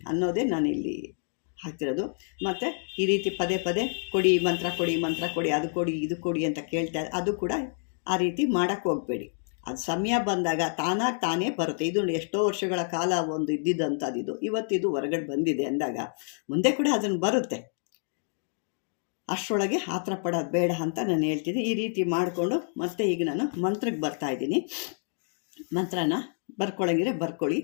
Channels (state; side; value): silent; right; digital silence